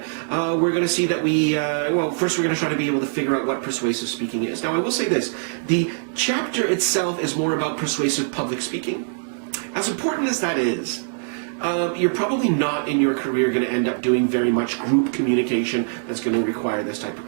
we're going to see that first we're going to try to be able to figure out what persuasive speaking is. Now I will say this, the chapter itself is more about persuasive public speaking. As important as that is, you're probably not in your career going to end up doing very much group communication that's going to require this type of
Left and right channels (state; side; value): silent; left; digital silence